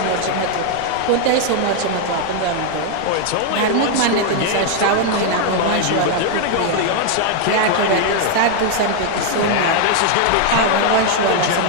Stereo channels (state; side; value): different; both; correlation 0.00